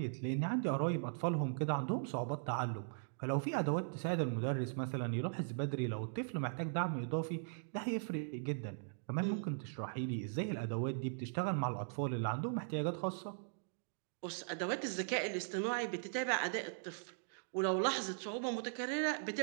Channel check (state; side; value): silent; left; digital silence